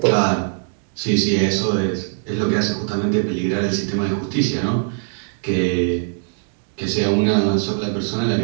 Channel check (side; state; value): left; silent; 59 dB below the other